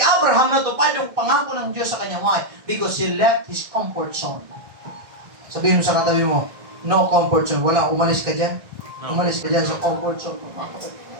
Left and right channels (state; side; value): late; left; 1.6 ms